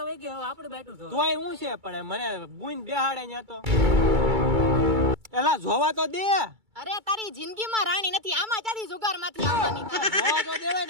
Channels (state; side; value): late; left; 2.3 ms